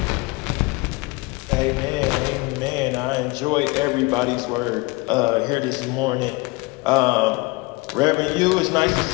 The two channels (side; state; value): right; quieter; 24.8 dB